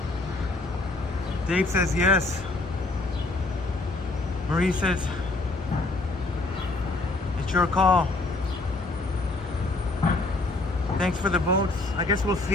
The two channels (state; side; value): quieter; right; 3.1 dB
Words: Dave says yes. Marie says it's your call. Thanks for the votes. I guess we'll